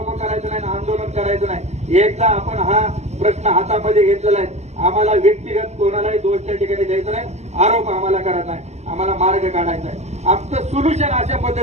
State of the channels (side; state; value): left; late; 0.33 ms